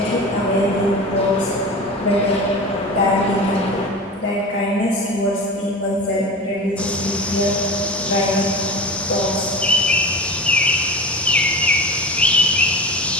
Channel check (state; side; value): normal; both; correlation 0.31